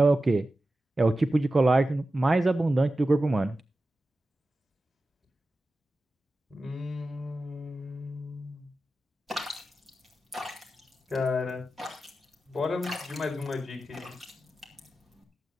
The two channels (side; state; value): both; normal; correlation 0.93